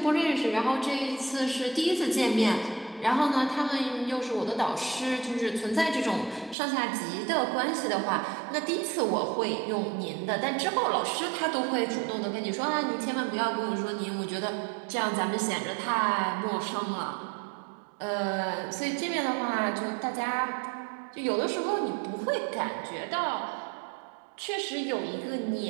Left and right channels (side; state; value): left; drops out; at 6.6 s